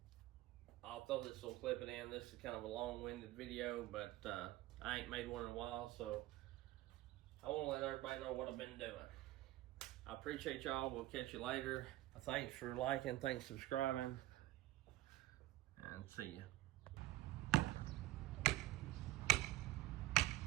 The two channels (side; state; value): left; quieter; 16.7 dB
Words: I'll throw this little clip in. This is kind of a long-winded video, but I ain't made one in a while, so I want to let everybody know what I've been doing. I appreciate y'all. We'll catch you later. Thanks for liking, thanks for subscribing, and see you.